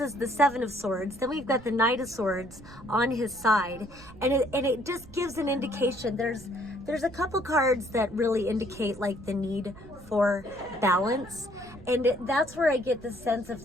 is the Seven of Swords, then we've got the Knight of Swords on his side, and it just gives an indication. There's a couple cards that really indicate like the need for balance, and that's where I get the sense of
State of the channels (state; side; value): noise; right; rumble, 19 dB below the sound